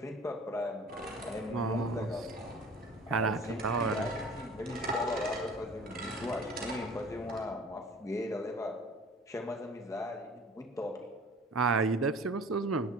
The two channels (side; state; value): both; normal; correlation 0.44